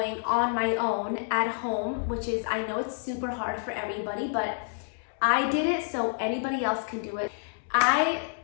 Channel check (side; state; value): right; silent; digital silence